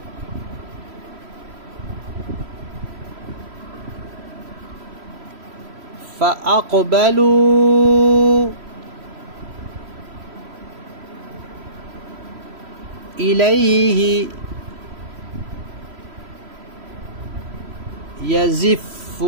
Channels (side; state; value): left; late; 3.0 ms